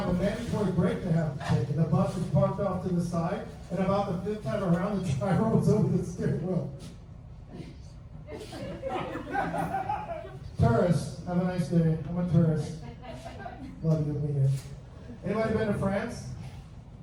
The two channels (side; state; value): both; identical; correlation 1.00